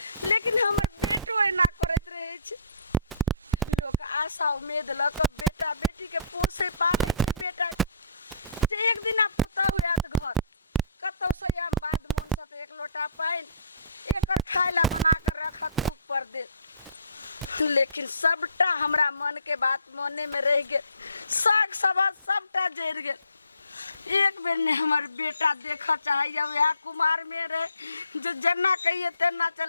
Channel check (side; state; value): both; inverted; correlation -0.55